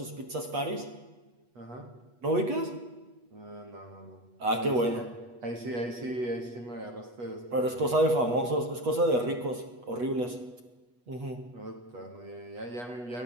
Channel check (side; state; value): left; late; 8.2 ms